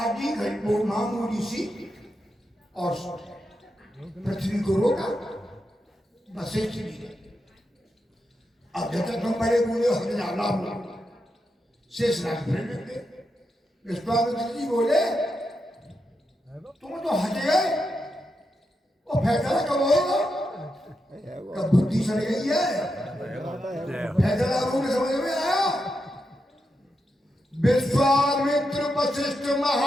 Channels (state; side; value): normal; both; correlation 0.86